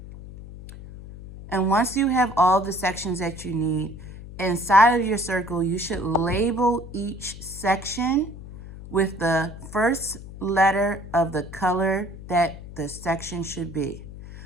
And once you have all the sections that you need, inside of your circle, you should label each section with the first letter of the color that the section should be.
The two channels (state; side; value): noise; left; hum, 14 dB below the sound